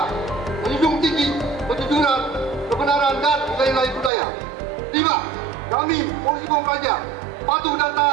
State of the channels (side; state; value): left; drops out; at 4.1 s